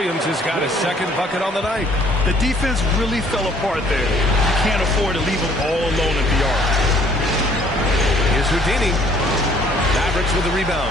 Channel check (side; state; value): both; normal; correlation 0.60